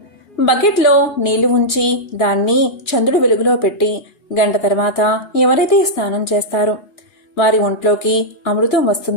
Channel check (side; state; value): right; late; 2.4 ms